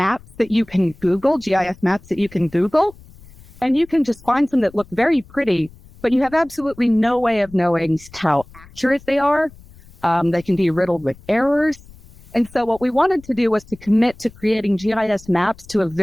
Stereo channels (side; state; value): left; noise; rumble, 23 dB below the sound